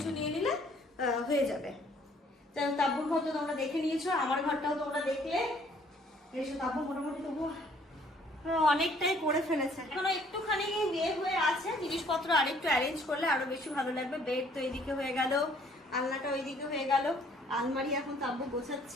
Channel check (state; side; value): normal; both; correlation 0.61